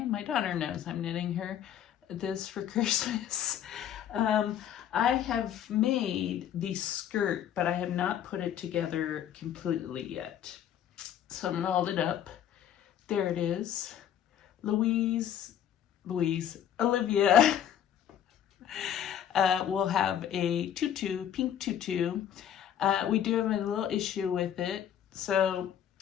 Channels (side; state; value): right; quieter; 9.9 dB